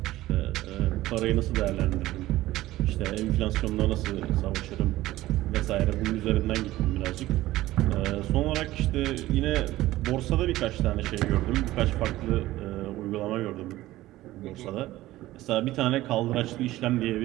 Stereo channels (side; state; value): left; quieter; 16.4 dB